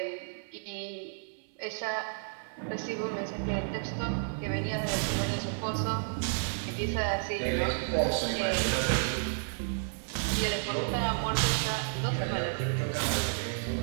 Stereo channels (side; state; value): left; silent; 57 dB below the other